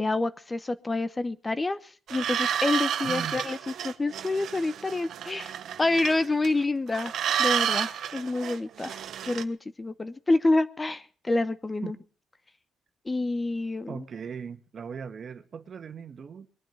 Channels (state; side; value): normal; both; correlation 0.88